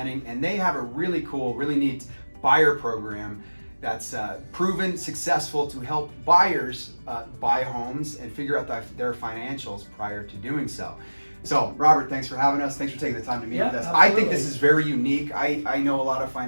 and they have a really cool, really neat buyer program that's proven successful to help buyers buy homes and figure out their financials prior to doing so. So, Robert, thanks for having us. Thanks for taking the time to meet with us. Absolutely. I think this is very unique. I know a lot of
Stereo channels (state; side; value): inverted; both; correlation -1.00